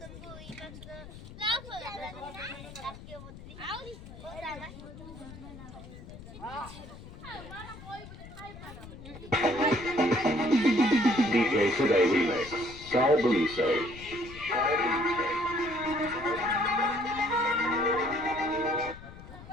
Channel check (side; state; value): left; noise; rumble, 15 dB below the sound